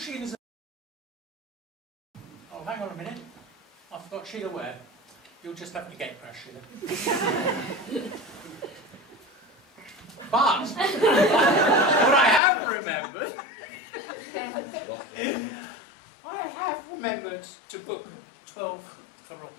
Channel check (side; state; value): right; drops out; at 12.4 s